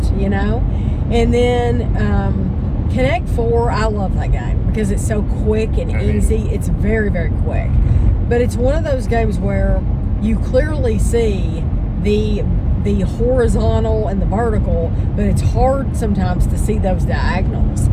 you know? And then Connect 4, I love that game because it's so quick and easy. It's very, very quick. But it's one of those games where you clearly see the horizontal and the vertical, but it's hard sometimes to see those diagonals.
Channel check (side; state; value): both; identical; correlation 1.00